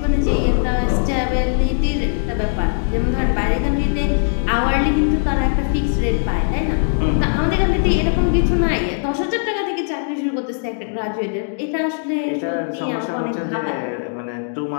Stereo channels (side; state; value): right; silent; digital silence